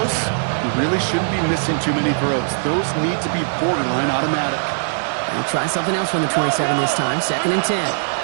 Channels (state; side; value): silent; left; digital silence